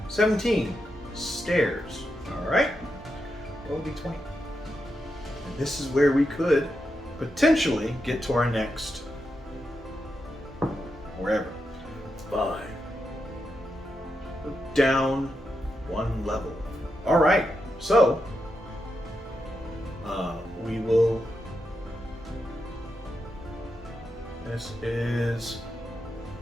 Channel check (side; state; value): both; normal; correlation 0.86